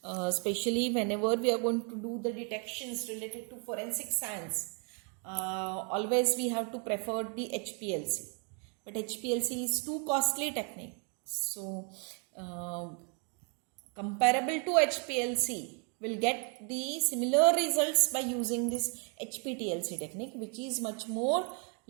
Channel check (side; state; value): left; quieter; 38.0 dB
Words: especially whenever we are going to do the detections related to forensic science, always we have to prefer the HPLC. But HPLC is too costly technique. So, comparable to HPLC, will get the similar results by using this HPTLC technique, which is much more